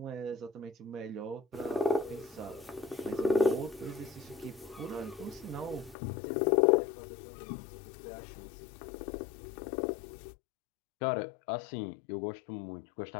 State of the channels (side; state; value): right; drops out; at 6.0 s